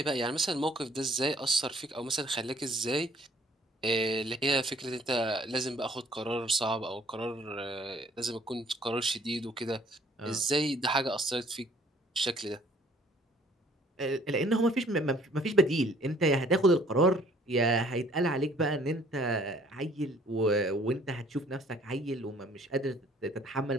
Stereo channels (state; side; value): normal; both; correlation 0.59